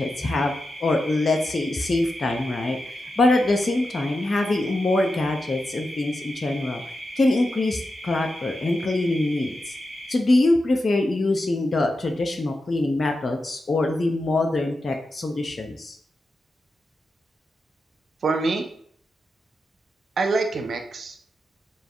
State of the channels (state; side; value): normal; both; correlation 0.89